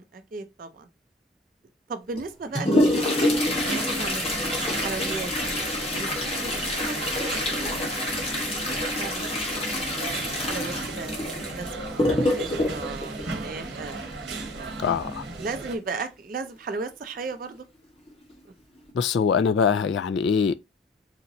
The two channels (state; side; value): normal; both; correlation 0.45